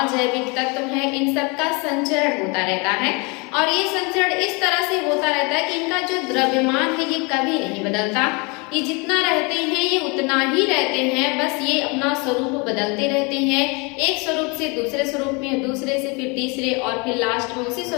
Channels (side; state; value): right; quieter; 29.9 dB